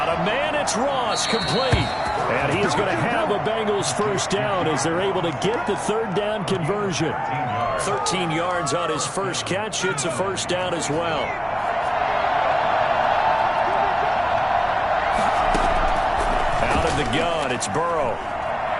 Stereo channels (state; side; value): identical; both; correlation 1.00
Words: a man, it's Ross, complete. And he is going to have a Bengals first down as they're able to get the third down conversion. 13 yards on his first catch. It's a first down as well. Out of the gun, it's Burrow.